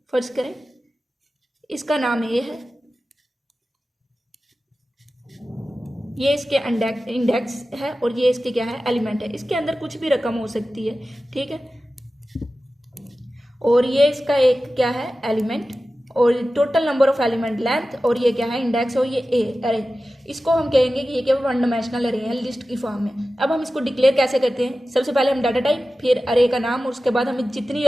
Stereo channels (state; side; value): normal; both; correlation 0.95